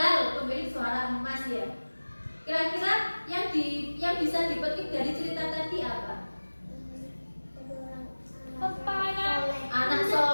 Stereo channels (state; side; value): inverted; both; correlation -1.00